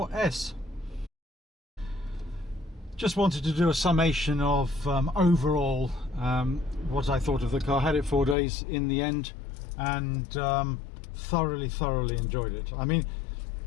Just wanted to do a summation of overall what I thought of the car. Had it 4 days in the end and thoroughly enjoyed it. I mean,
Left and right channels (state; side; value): drops out; right; at 8.3 s